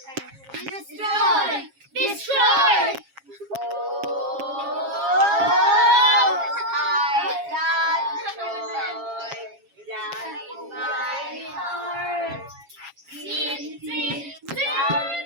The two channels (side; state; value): left; late; 7.3 ms